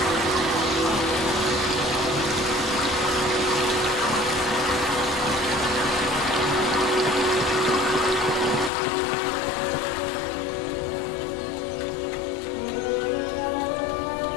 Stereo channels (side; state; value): right; drops out; at 8.7 s